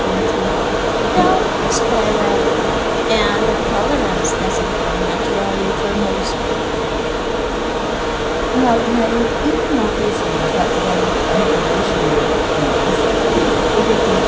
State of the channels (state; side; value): identical; both; correlation 1.00